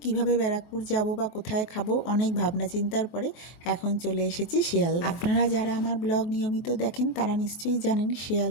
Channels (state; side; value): late; right; 23 ms